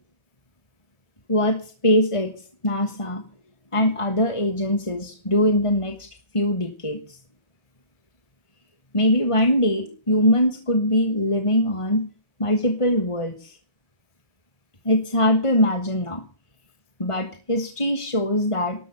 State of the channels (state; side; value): late; right; 1.5 ms